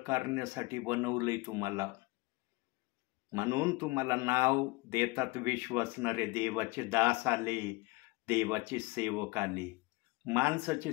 बनवलंय तुम्हाला. म्हणून तुम्हाला नाव देतात विश्वासणारे देवाचे दास आले, देवाचे सेवक आले. माणसाचे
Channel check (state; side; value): quieter; right; 23.9 dB